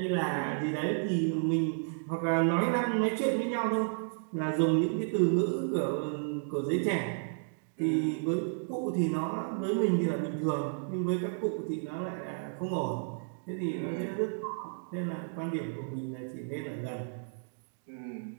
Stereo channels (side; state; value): left; silent; digital silence